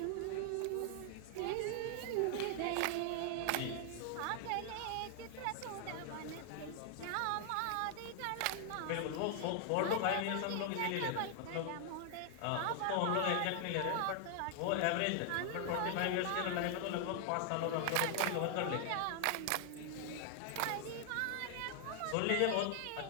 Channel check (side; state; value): both; different; correlation 0.00